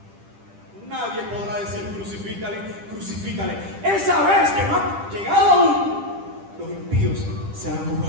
nadie podrá decir crucifícale. Esa vez que no ha llegado aún, los impíos serán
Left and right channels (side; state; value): left; late; 10 ms